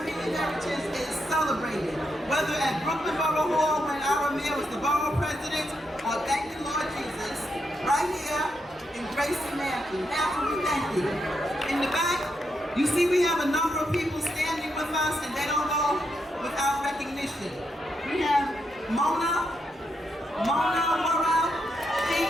heritage is celebrated, whether at Brooklyn Borough Hall when our mayor was the borough president, or thank the Lord Jesus, right here in GRACIE Mansion. Now, we thank you. In the back, you see we have a number of people standing with us, and they don't go without recognition. We have Mona Morale. She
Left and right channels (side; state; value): both; normal; correlation 0.82